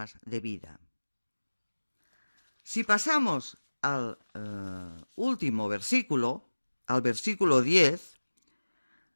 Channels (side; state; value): both; inverted; correlation -1.00